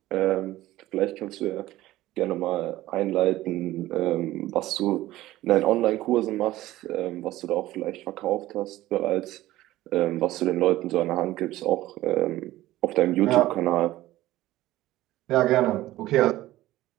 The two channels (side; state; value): left; quieter; 16.1 dB